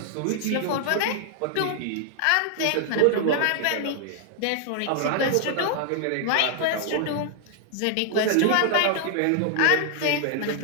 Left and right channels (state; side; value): different; both; correlation 0.00